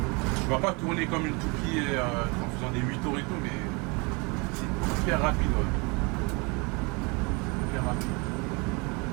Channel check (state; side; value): quieter; left; 29.2 dB